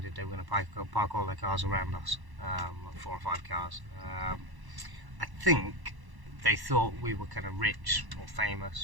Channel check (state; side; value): late; left; 1.1 ms